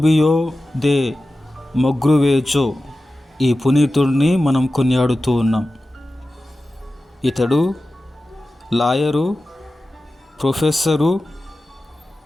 దే మొగ్రువేజో ఈ పునీతుడిని మనం కొనియాడుతూ ఉన్నాం. ఇతడు లాయరు, ప్రొఫెసరు,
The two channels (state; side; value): normal; both; correlation 0.94